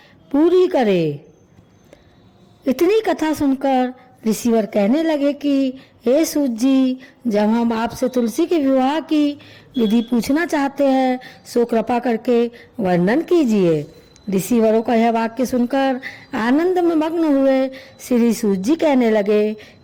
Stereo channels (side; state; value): both; identical; correlation 1.00